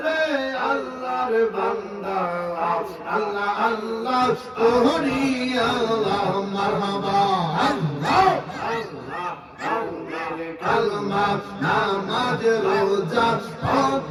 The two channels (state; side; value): identical; both; correlation 1.00